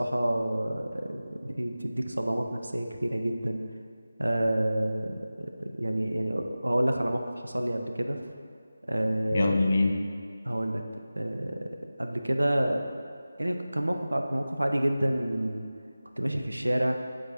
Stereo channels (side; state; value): both; inverted; correlation -0.96